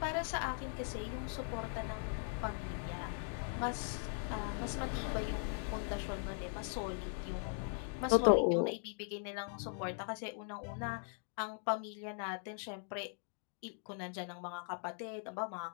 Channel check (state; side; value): silent; right; 51 dB below the other